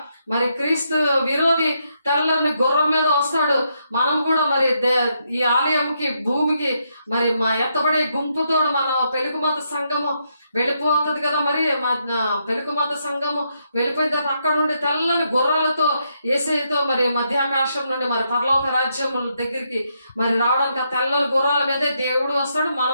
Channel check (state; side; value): inverted; both; correlation -0.79